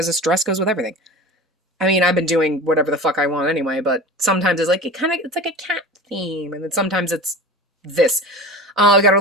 this dress goes with everything. I mean, I've been doing whatever the fuck I want anyway, but sometimes it's like, it's like a cat theme, and then sometimes it's this. We got our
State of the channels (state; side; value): normal; both; correlation 0.34